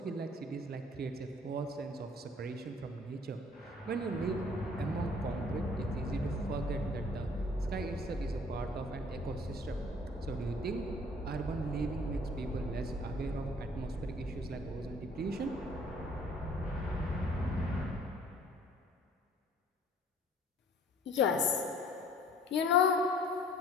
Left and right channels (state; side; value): normal; both; correlation 0.54